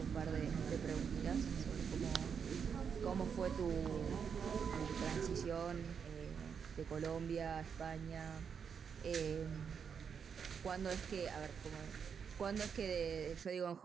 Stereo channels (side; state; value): left; quieter; 6.8 dB